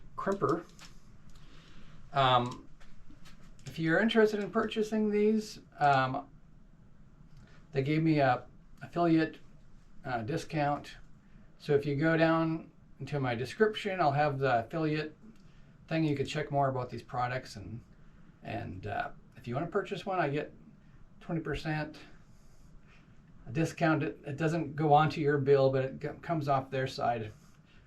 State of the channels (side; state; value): both; identical; correlation 1.00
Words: crimper. If you're interested in purchasing these, they gave me a affiliate discount. So if you go down into my description, I'll have the affiliate thing. You can check more about these products, and if you want to purchase one, I get 20% discount. It doesn't go onto your bill, but it comes off their side.